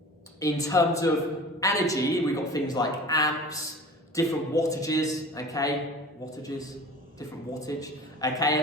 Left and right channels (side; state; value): both; normal; correlation 0.40